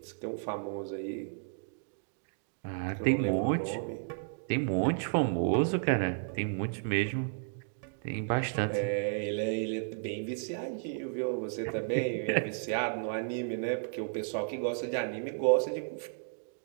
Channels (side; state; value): left; silent; digital silence